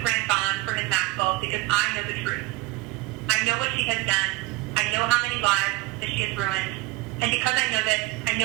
grant bond for Ms. Maxwell because I know the truth. I know what she has done. I know how many lives that she has ruined. And because I know this, I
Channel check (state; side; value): quieter; left; 19.3 dB